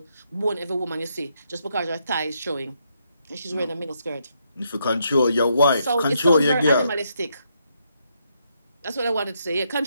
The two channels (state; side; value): inverted; both; correlation -0.77